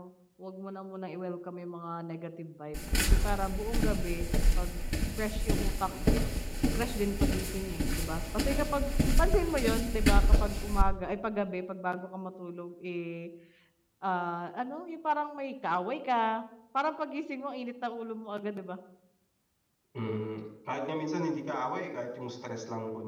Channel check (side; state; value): both; identical; correlation 1.00